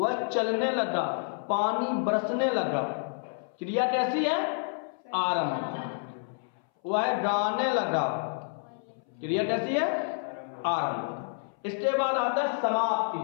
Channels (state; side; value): silent; right; 58 dB below the other